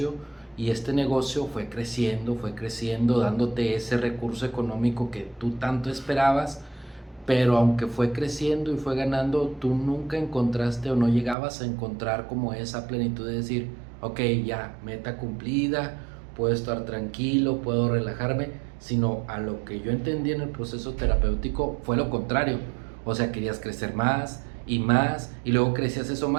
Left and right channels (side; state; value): left; drops out; at 11.4 s